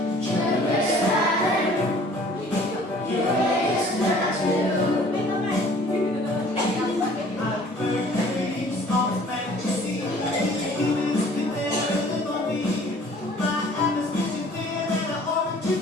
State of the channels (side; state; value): both; normal; correlation 0.52